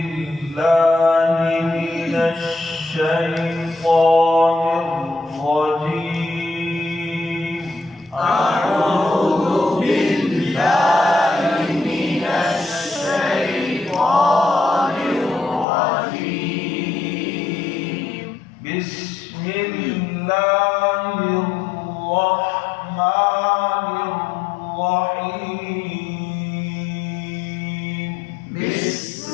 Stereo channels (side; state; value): right; drops out; at 15.7 s